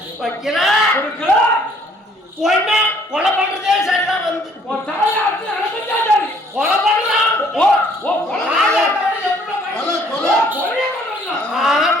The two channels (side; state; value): both; normal; correlation 0.60